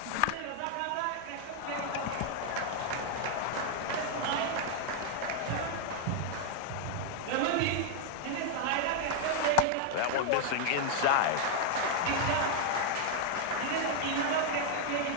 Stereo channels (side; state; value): both; different; correlation 0.00